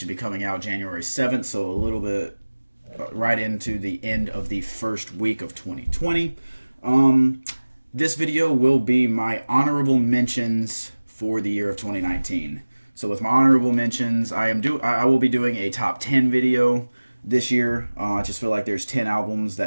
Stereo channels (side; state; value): both; inverted; correlation -1.00